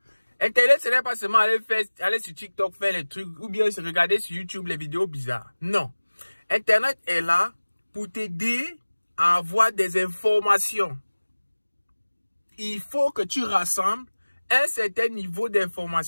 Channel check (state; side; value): inverted; both; correlation -1.00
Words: Internet, ce n'est pas seulement aller sur TikTok faire les trucs ou bien regarder sur YouTube les vidéos bizarres. Non. Internet est là pour t'aider à avoir des informations. Il faut que tu rassembles un certain niveau